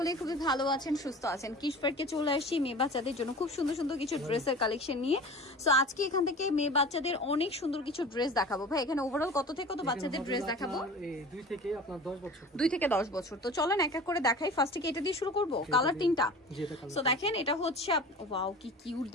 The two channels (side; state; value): both; normal; correlation 0.38